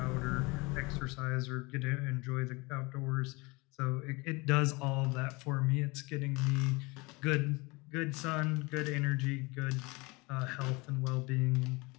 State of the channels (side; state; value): right; quieter; 25.7 dB